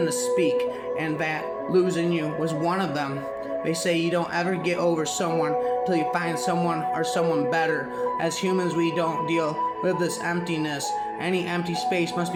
to speak, and that losing you was one of them. They say you don't ever get over someone till you find someone or someone better. As humans, we don't deal with this emptiness. Any empty space must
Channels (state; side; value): identical; both; correlation 1.00